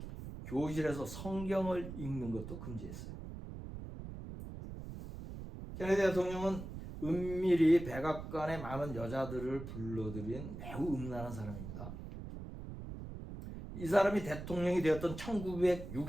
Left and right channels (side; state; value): right; noise; rumble, 9 dB below the sound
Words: 교실에서 성경을 읽는 것도 금지했어요. 케네디 대통령은 은밀히 백악관에 많은 여자들을 불러들인 매우 음란한 사람입니다. 이 사람이 대통령이 되었던